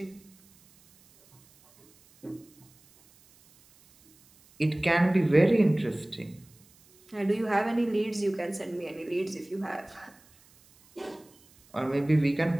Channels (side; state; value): right; noise; hiss, 29 dB below the sound